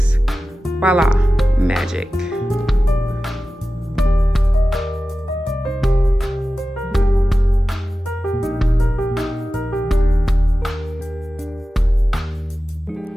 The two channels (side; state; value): both; normal; correlation 0.95